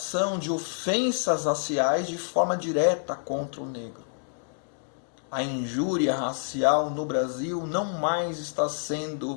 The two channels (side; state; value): right; silent; digital silence